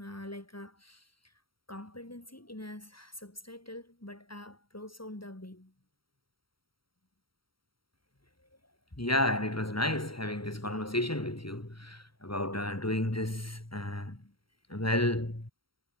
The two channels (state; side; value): late; right; 0.74 ms